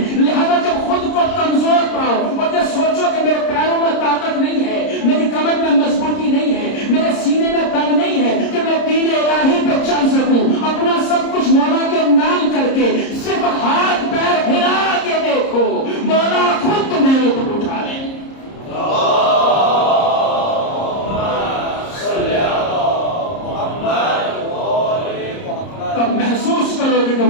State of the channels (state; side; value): late; right; 30 ms